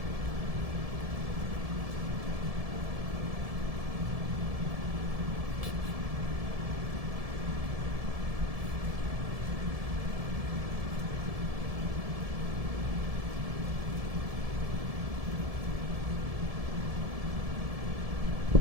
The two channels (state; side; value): late; left; 1.7 ms